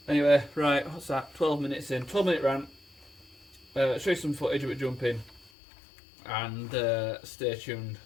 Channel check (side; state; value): right; drops out; at 5.5 s